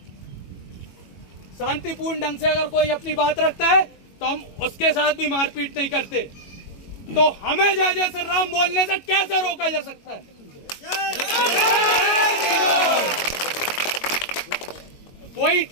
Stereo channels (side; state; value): right; late; 22 ms